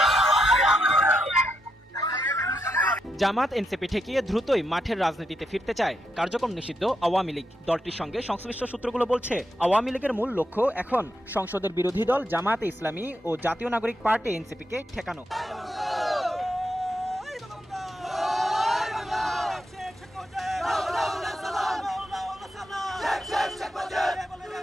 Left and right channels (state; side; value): normal; both; correlation 0.83